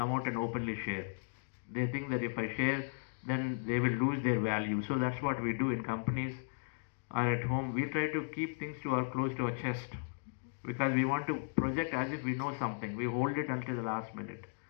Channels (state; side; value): silent; right; digital silence